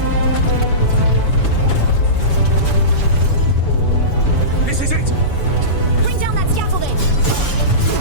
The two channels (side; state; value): right; late; 7.0 ms